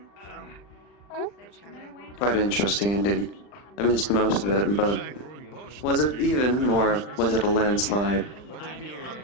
Quite interesting indeed. I missed most of it, but was it even, or was it a landslide?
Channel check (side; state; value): right; late; 40 ms